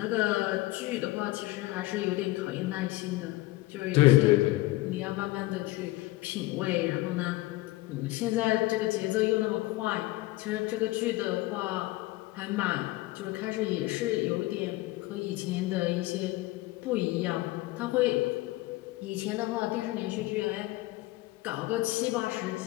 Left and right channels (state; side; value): quieter; right; 19.1 dB